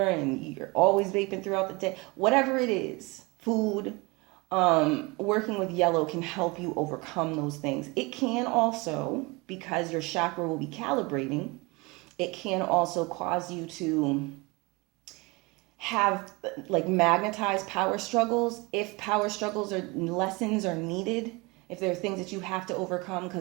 and you're always vaping throughout the day. Whatever it is, food, working with yellow can help you overcome those things. It can also, because your chakra will be calibrating, it can also cause you to have like magnetized power struggles. If power struggles or lessons are needed, if there are things that you have to overcome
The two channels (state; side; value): quieter; left; 26.0 dB